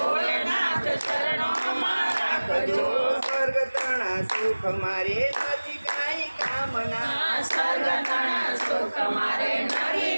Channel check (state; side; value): inverted; both; correlation -1.00